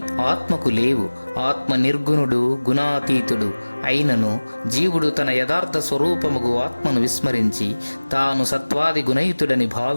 ఆత్మకు లేవు. ఆత్మ నిర్గుణుడు, గుణాతీతుడు అయినను జీవుడు తన యథార్థ స్వరూపముగు ఆత్మను విస్మరించి తాను సత్వాది గుణయుతుడని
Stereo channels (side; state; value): both; inverted; correlation -1.00